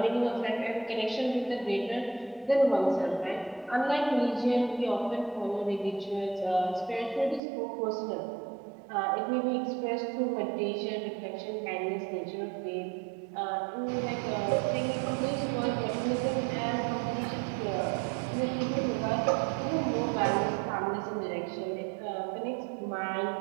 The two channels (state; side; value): drops out; left; at 7.4 s